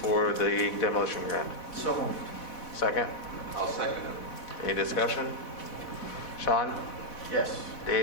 the demolition grant? So moved. Second? I'll second it. Any discussion? Sean? Yes.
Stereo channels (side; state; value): right; late; 4.1 ms